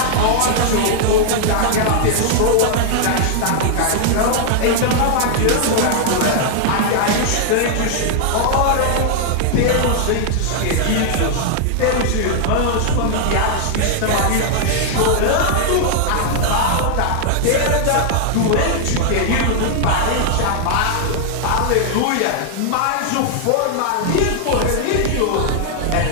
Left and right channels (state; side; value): different; both; correlation -0.01